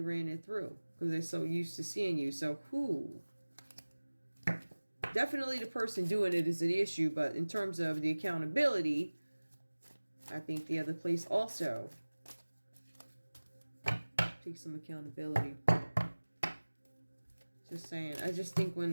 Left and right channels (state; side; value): inverted; both; correlation -1.00